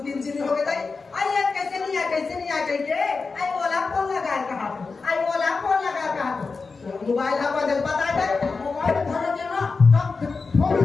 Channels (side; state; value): right; quieter; 4.4 dB